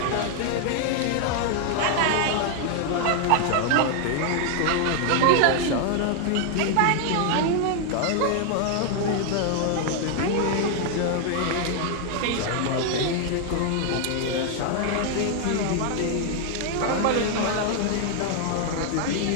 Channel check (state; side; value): different; both; correlation 0.00